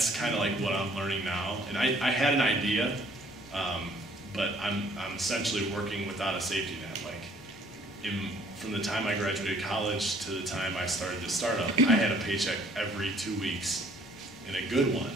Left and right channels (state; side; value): normal; both; correlation 0.59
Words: kind of like what I'm learning now. And I had an idea, but I'm essentially working without a safety net. Like, from the time I graduated college to the time I started this startup, I had a paycheck every 2 weeks, and a good one,